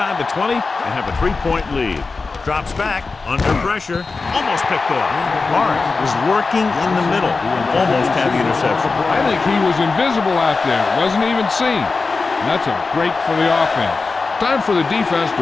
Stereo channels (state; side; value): quieter; right; 4.1 dB